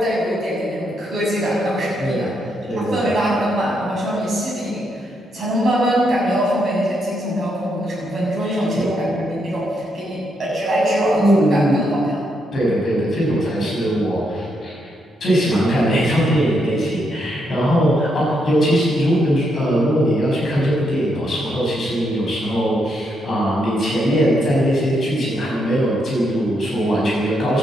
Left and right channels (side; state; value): both; normal; correlation 0.78